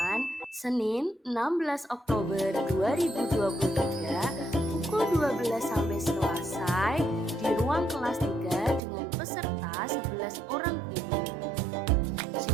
Senin 16 Oktober 2023 pukul 12 sampai selesai di ruang kelas 3 dengan peserta 11 orang guru.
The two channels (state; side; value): drops out; left; at 8.8 s